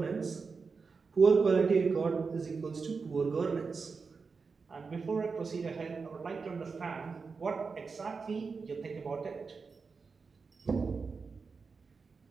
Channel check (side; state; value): left; quieter; 4.9 dB